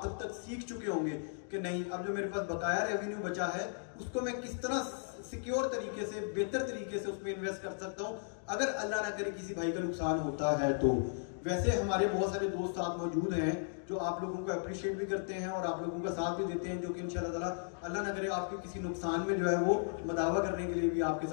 तब तक सीख चुके होंगे कि नहीं, अब जो मेरे पास बकाया रेवेन्यू बचा है उसको मैं किस तरह सिक्योर तरीके से, बेहतर तरीके से उसमें इन्वेस्ट कर सकता हूँ अगर अल्लाह ना करे किसी भाई का नुकसान होता है तो। वैसे हमारे बहुत सारे दोस्त साथ मौजूद हैं जो आप लोगों को अप्रिशिएट भी करते हैं और आप लोगों का साथ भी देते हैं, जो कि इंशाल्लाह ताला अल्लाह ना करे आपके किसी नुकसान में जो है वो मदावा करने के लिए भी आपके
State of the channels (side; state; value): right; silent; digital silence